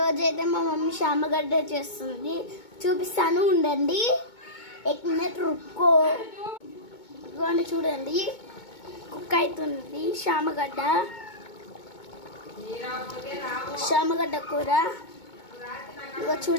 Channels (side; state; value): right; late; 2.2 ms